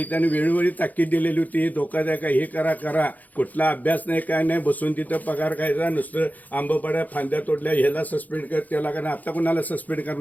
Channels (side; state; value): right; late; 0.080 ms